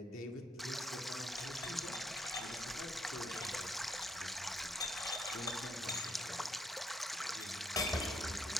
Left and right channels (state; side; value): normal; both; correlation 0.74